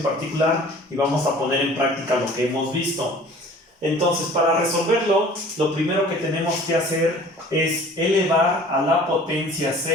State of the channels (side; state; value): both; normal; correlation 0.47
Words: particular y vamos a poner en práctica lo que hemos visto. Entonces, para resolverlo, lo primero que tenemos que hacer es elevar a la potencia